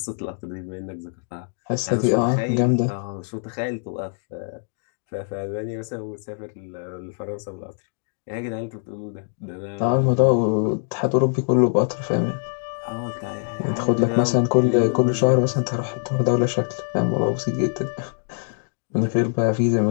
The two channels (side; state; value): right; silent; 63 dB below the other